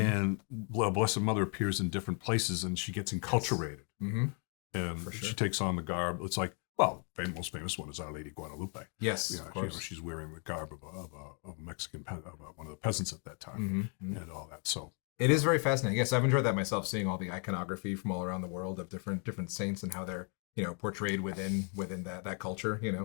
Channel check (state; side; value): quieter; right; 39.1 dB